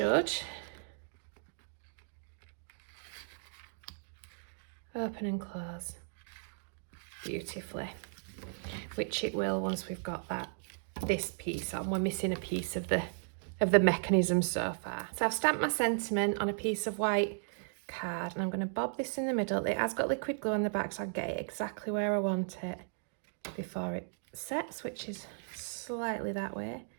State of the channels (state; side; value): silent; left; digital silence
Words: open and close beautifully, which it will once we've got this piece on. We're missing a piece of the mechanism so far. So I've stamped my sentiment on a piece of white card, and I'm going to bob this in the middle. It has got liquid glue on the back, so I get it exactly where I want it before it sets, which is slightly that way.